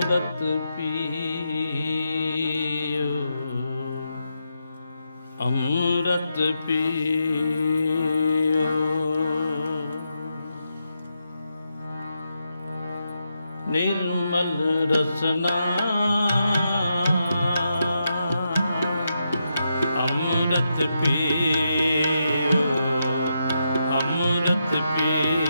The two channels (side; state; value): both; inverted; correlation -0.84